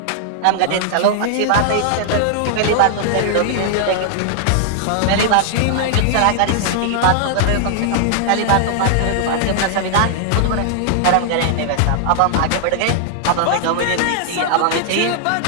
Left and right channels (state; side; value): different; both; correlation -0.01